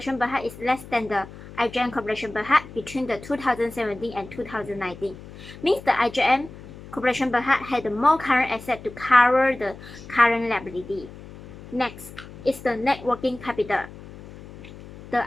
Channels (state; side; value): noise; left; hum, 16 dB below the sound